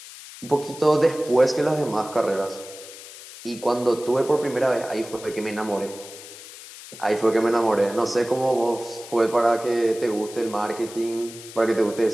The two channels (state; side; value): noise; left; hiss, 15 dB below the sound